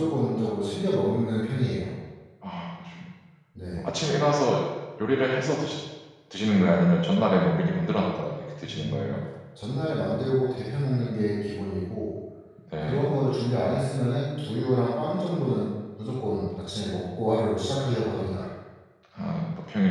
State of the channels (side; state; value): both; identical; correlation 1.00